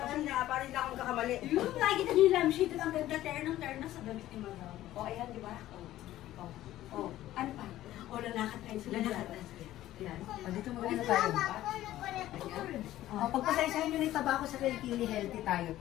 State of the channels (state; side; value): quieter; right; 14.3 dB